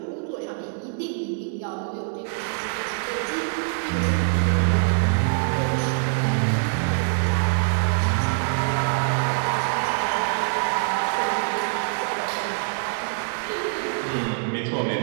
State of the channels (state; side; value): silent; left; 62 dB below the other